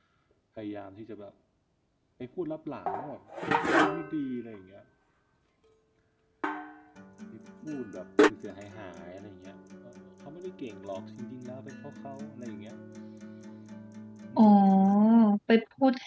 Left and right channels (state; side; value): identical; both; correlation 1.00